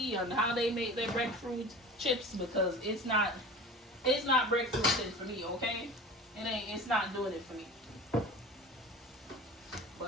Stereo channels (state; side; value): normal; both; correlation 0.36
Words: on how they make their breadfruit chips, because it's not breadfruit chips for me, okay? It's not doing it for me.